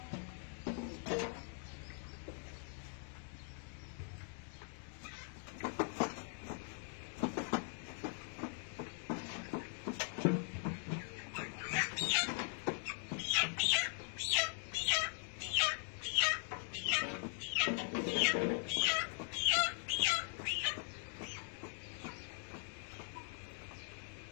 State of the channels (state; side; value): silent; right; 50 dB below the other